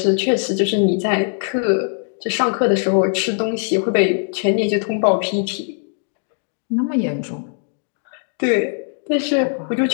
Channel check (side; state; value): right; silent; 59 dB below the other